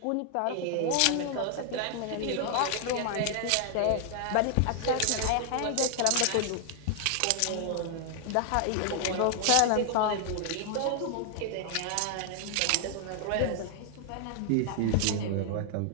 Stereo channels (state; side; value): different; both; correlation 0.00